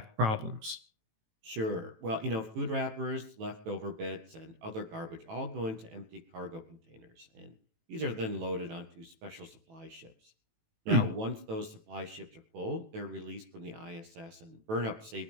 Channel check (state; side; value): late; left; 18 ms